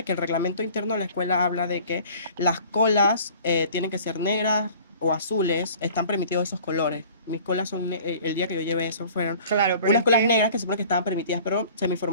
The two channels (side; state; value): both; inverted; correlation -0.48